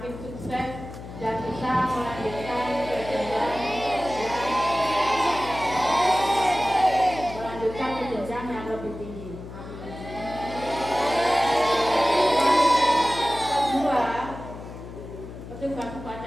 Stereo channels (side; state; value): left; noise; hum, 12 dB below the sound